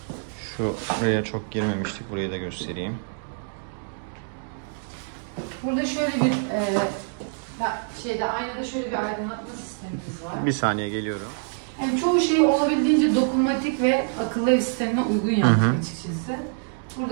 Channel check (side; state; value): left; silent; digital silence